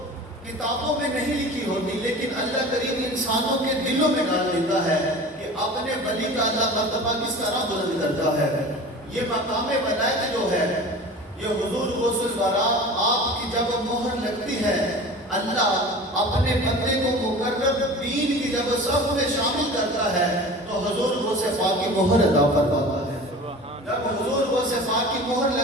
کتابوں میں نہیں لکھی ہوتی، لیکن اللہ کریم انسانوں کے دلوں میں ڈال دیتا ہے کہ اپنے ولی کا اللہ مرتبہ کس طرح بلند کرتا ہے۔ یہ مقام ولایت جو ہے، یہ حضور غوث الورا آپ کی جب مہر لگتی ہے، اللہ اپنے بندے کو مقرر دین کی جب صف میں شامل کرتا ہے تو حضور غوث پاک کی مہر عطا فرماتا ہے۔ جب حضور غوث پاک کی مہر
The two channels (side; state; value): both; normal; correlation 0.38